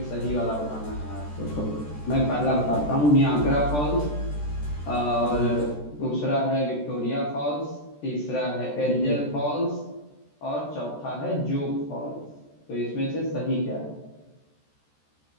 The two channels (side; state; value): right; late; 14 ms